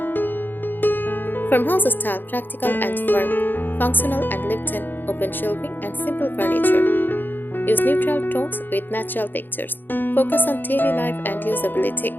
Farmhouse style, practical and firm, functional and lived-in, open shelving and simple furniture. Use neutral tones with natural textures. Focus on daily life and usability.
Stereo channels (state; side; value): late; right; 0.092 ms